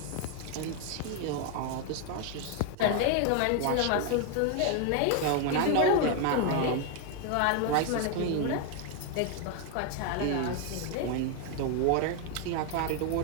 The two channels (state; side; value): different; both; correlation 0.01